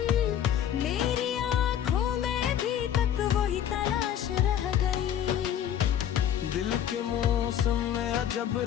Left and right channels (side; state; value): right; quieter; 10.0 dB